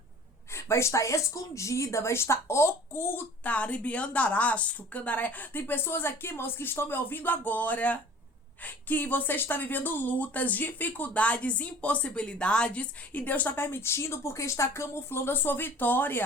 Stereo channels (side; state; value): both; normal; correlation 0.46